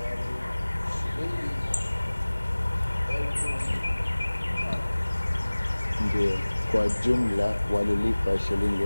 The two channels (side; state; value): both; inverted; correlation -1.00